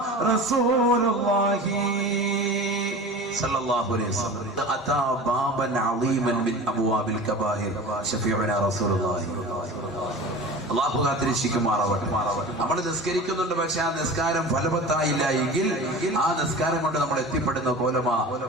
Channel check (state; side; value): normal; both; correlation 0.36